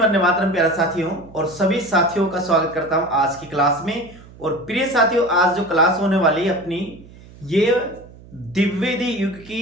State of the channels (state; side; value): noise; right; hum, 21 dB below the sound